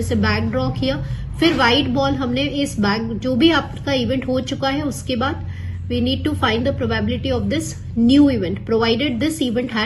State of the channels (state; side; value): identical; both; correlation 1.00